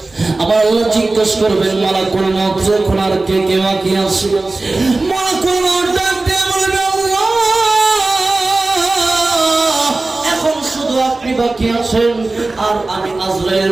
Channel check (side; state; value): left; quieter; 3.2 dB